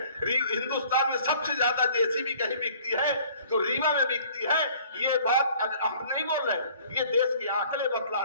हिंदुस्तान में सबसे ज्यादा जेसीबी कहीं बिकती है तो रीवा में बिकती है। ये बात हम नहीं बोल रहे, ये देश के आंकड़े बतला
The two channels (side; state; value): both; inverted; correlation -0.54